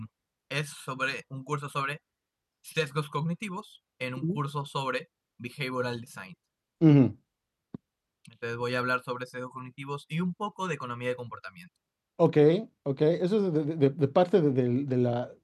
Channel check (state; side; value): identical; both; correlation 1.00